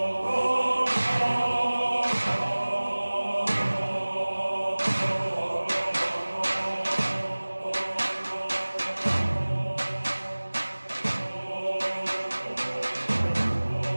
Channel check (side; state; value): both; inverted; correlation -1.00